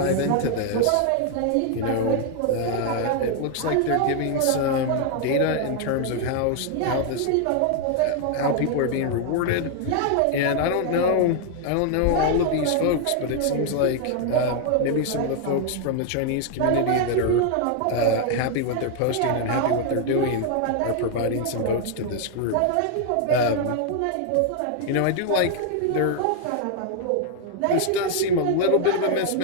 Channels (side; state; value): both; different; correlation 0.00